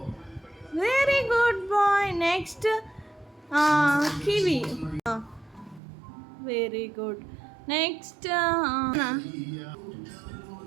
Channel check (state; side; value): drops out; left; at 5.8 s